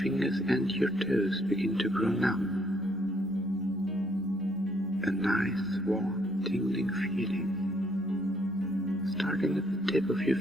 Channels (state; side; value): normal; both; correlation 0.69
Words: and your toes begin to grow numb. A nice, warm, tingling feeling, starting at the tip of your